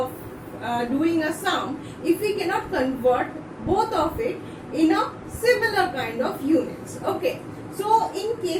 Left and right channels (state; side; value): identical; both; correlation 1.00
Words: doing a sum if we cannot convert both of it in a similar kind of units. Okay. So in